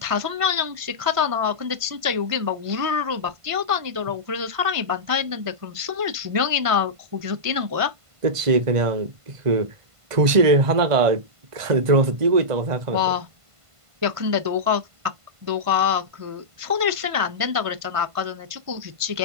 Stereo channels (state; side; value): late; left; 1.5 ms